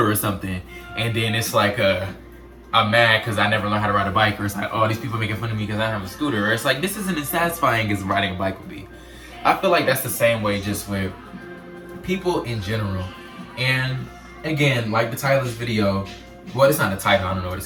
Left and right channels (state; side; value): identical; both; correlation 1.00